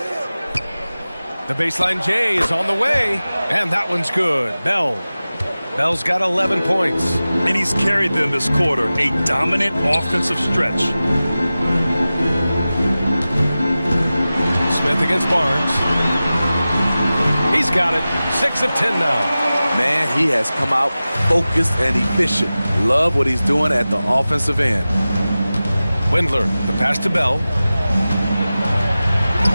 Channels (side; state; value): both; inverted; correlation -0.96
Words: The baseline J is on the way. And that one's good. Bell's got 11 points. And he's carried them this quarter. A dominant offensive stretch. Smith against Barnes. He's got it. 6 of 10 now. Man, he has come out focused and efficient. Love what he's doing at the offensive end. Windler, the pass to Bell.